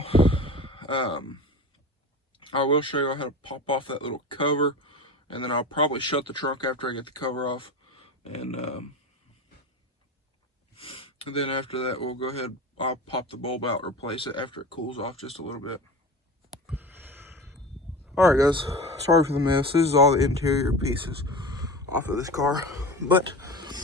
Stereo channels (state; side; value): normal; both; correlation 0.31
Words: I will show you how to pop off that little cover, and then I'll probably shut the trunk after I get the cover off. And then after that, we'll go ahead, I'll pop the bulb out, replace it after it cools off just a little bit. Alright guys, sorry for the mess. This is all the interior pieces off of this car, but